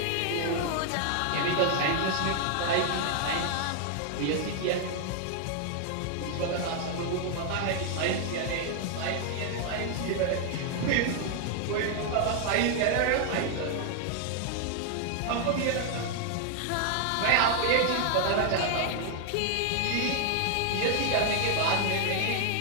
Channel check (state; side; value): different; both; correlation 0.00